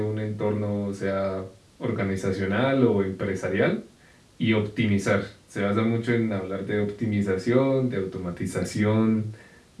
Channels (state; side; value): identical; both; correlation 1.00